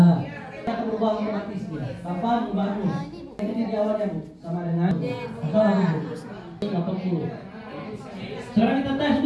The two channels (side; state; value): both; identical; correlation 1.00